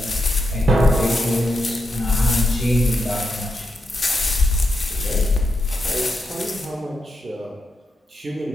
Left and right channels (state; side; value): normal; both; correlation 0.84